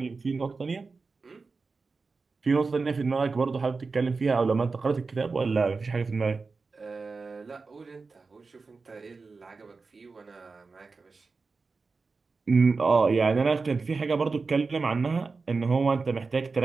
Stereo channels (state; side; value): quieter; left; 4.3 dB